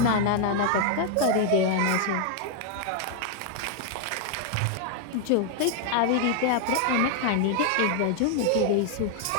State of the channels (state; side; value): different; both; correlation 0.00